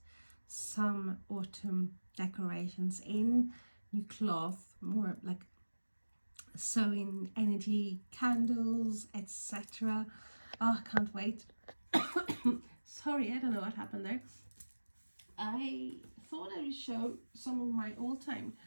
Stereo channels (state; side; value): inverted; both; correlation -1.00